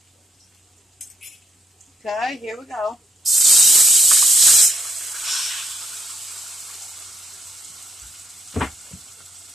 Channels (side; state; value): both; normal; correlation 0.74